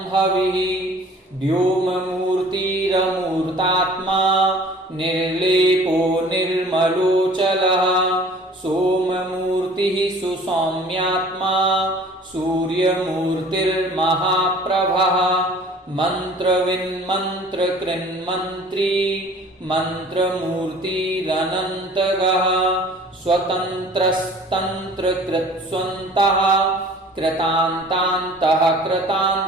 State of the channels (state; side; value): normal; both; correlation 0.49